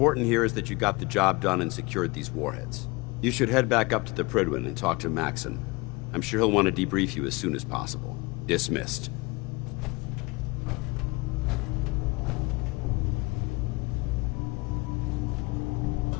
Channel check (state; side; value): quieter; right; 24.9 dB